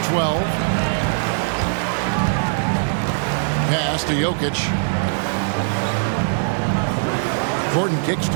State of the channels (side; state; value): left; silent; digital silence